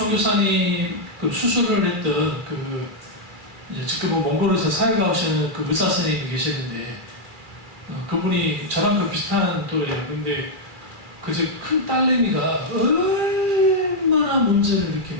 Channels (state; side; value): late; left; 2.4 ms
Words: 그 수술을 했던 지금은 몽골에서 사회가 오시는 그 의사 선생님이 계시는데 그분이 저랑 그 비슷한 또래예요. 근데 그 큰 딸내미가 얼마나 문제를